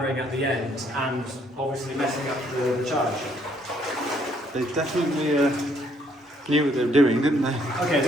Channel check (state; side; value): normal; both; correlation 0.67